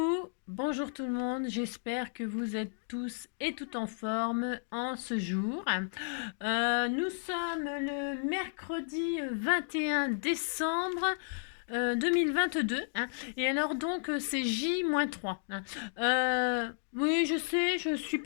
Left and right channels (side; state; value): right; silent; digital silence